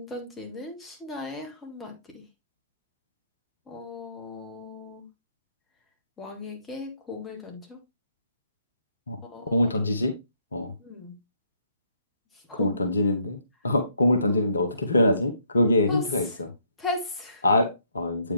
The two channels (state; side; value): inverted; both; correlation -0.71